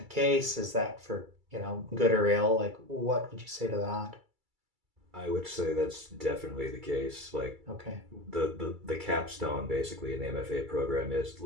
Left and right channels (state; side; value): late; left; 2.3 ms